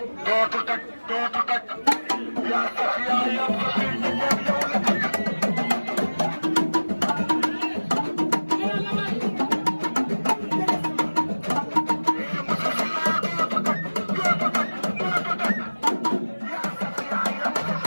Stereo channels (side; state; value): both; inverted; correlation -1.00